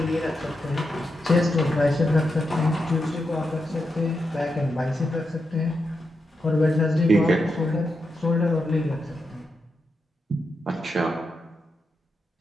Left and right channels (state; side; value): normal; both; correlation 0.86